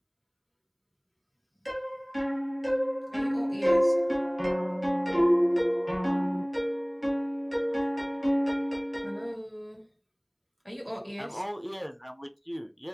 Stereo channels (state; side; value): identical; both; correlation 1.00